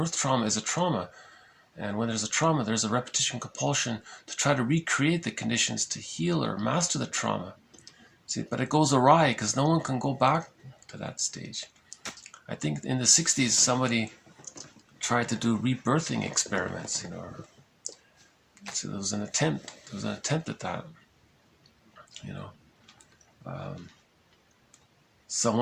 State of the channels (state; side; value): identical; both; correlation 1.00